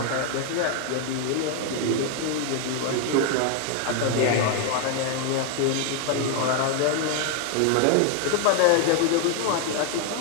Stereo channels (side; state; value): both; different; correlation 0.01